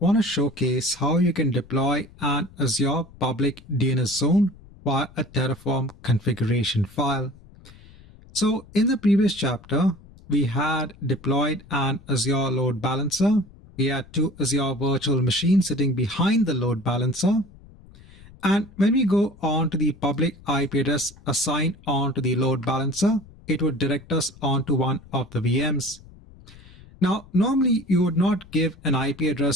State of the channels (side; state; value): left; noise; rumble, 22 dB below the sound